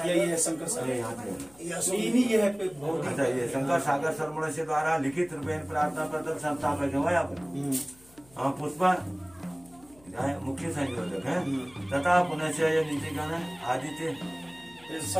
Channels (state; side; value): noise; left; hum, 27 dB below the sound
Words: सागर सरमण से द्वारा लिखित रूपेण प्रार्थना पत्र संस्थापक है पुष्पा मुख्य संयोजक है तथा पुनः नीचे का आदित्य